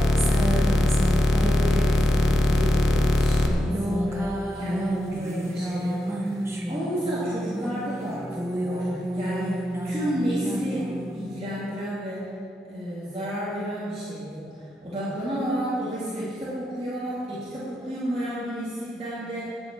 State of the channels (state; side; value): normal; both; correlation 0.85